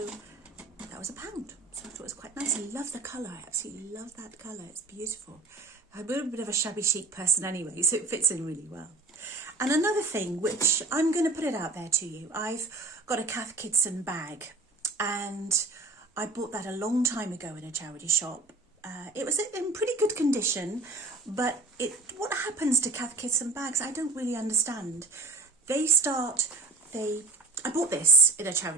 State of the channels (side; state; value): left; quieter; 3.4 dB